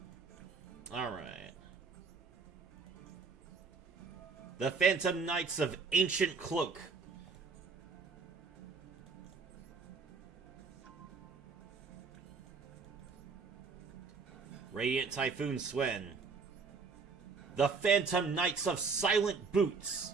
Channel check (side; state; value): left; quieter; 4.8 dB